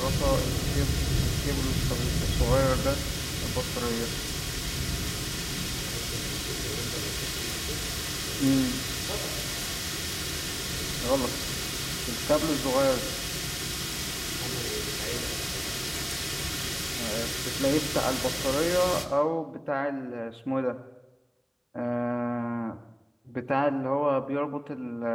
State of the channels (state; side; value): identical; both; correlation 1.00